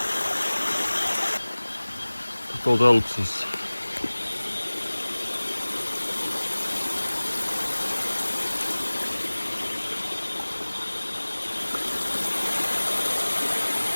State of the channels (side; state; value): both; inverted; correlation -1.00